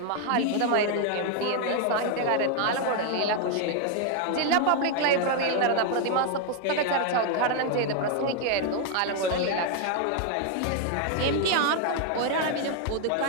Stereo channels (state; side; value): different; both; correlation 0.00